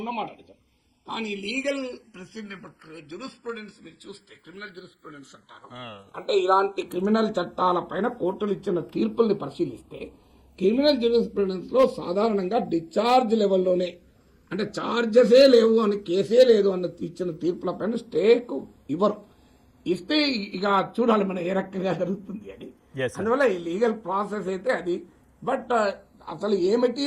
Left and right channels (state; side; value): identical; both; correlation 1.00